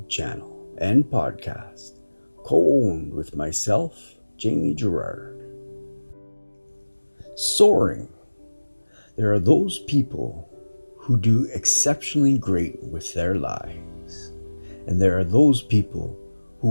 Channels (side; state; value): both; inverted; correlation -1.00